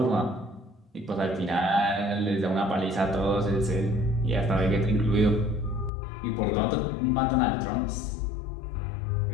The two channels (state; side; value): drops out; right; at 5.9 s